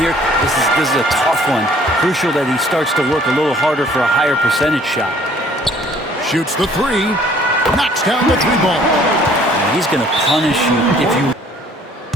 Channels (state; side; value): normal; both; correlation 0.57